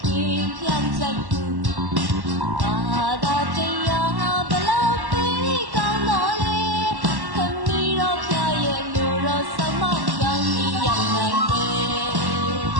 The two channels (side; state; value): left; late; 1.1 ms